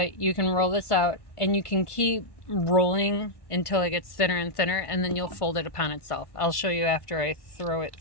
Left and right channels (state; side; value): late; right; 1.5 ms